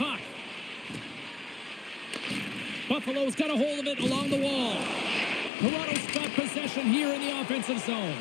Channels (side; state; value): right; drops out; at 5.5 s